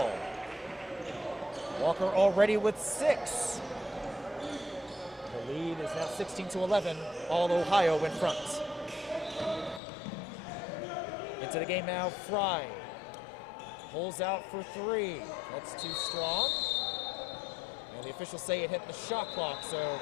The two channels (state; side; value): drops out; right; at 9.8 s